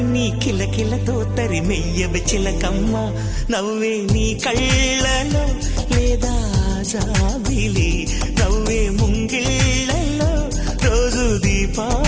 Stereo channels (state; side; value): identical; both; correlation 1.00